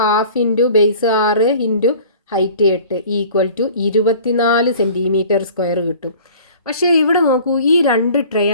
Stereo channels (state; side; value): inverted; both; correlation -0.46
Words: into base 6 into height 8 equal to 24 centimetre square കിട്ടും. പക്ഷേ ഇവിടെ നോക്കൂ, ഈ 2